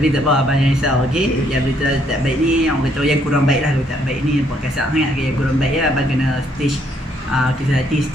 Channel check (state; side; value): normal; both; correlation 0.69